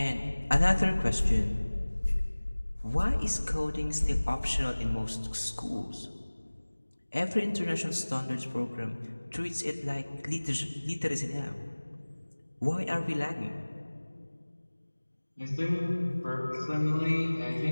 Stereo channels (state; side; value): inverted; both; correlation -1.00